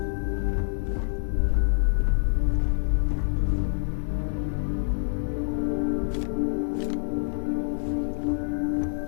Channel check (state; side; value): silent; right; digital silence